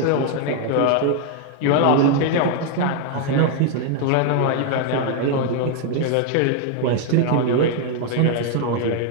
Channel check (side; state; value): both; different; correlation 0.00